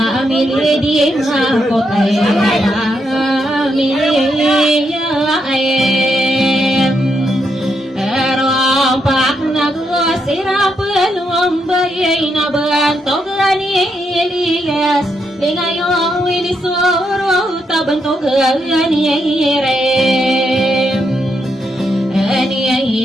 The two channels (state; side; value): normal; both; correlation 0.80